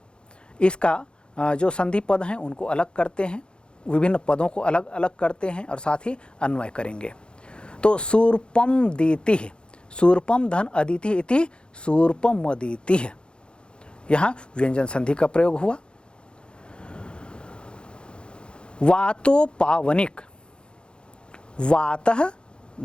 इसका जो संधि पद हैं उनको अलग करते हैं, विभिन्न पदों को अलग अलग करते हैं और साथ ही अन्वय करेंगे। तो शूर्पम दीति, शूर्पम धन अदिति इति शूर्पम अदिति, यहाँ व्यंजन संधि का प्रयोग हुआ। वातो पावनिक, वातः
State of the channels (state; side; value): late; right; 0.053 ms